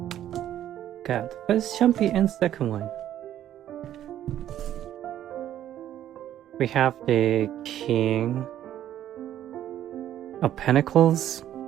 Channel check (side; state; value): left; quieter; 11.6 dB